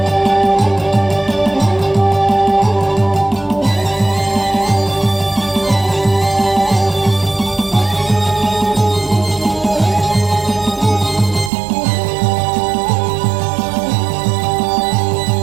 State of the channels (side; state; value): left; drops out; at 11.5 s